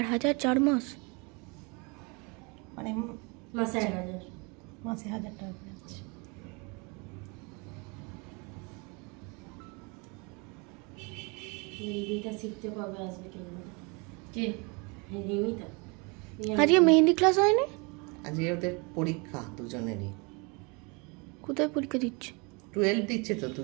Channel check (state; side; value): quieter; left; 30.4 dB